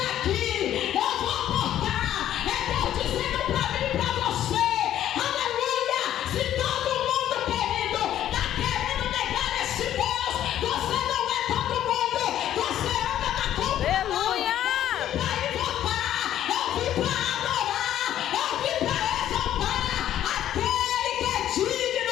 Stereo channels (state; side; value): quieter; right; 11.6 dB